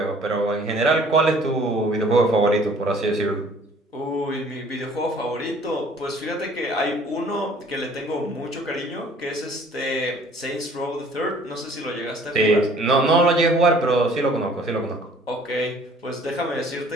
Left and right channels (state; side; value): normal; both; correlation 0.54